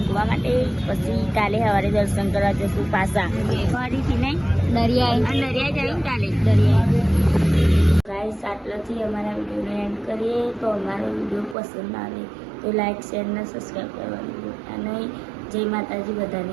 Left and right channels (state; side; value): drops out; left; at 11.6 s